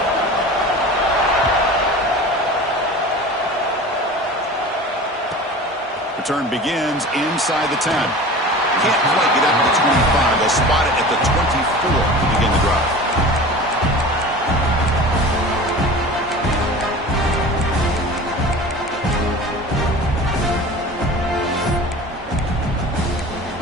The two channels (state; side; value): normal; both; correlation 0.37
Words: Return begins inside the 10. Can't quite get up to the 25. They'll spot it at the 24 to begin the drive.